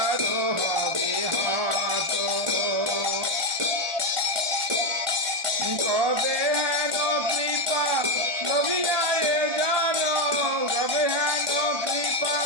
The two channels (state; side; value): late; left; 1.4 ms